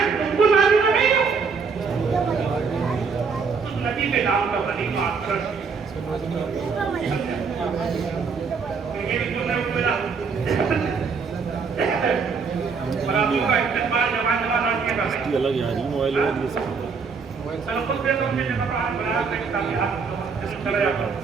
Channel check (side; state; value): left; quieter; 5.4 dB